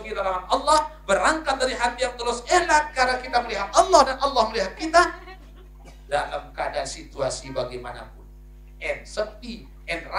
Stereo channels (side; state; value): both; identical; correlation 1.00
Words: larangan Allah, berangkat dari hati yang tulus ikhlas karena kita melihat Allah dan Allah melihat kita dalam keadaan situasi bagaimanapun. Sepi,